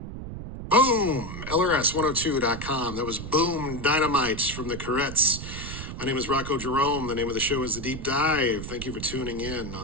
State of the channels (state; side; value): noise; right; rumble, 9 dB below the sound